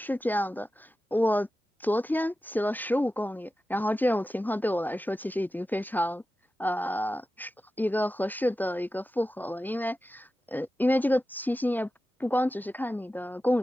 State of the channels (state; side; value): normal; both; correlation 0.93